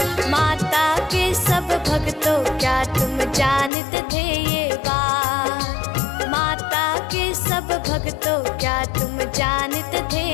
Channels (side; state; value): right; drops out; at 3.7 s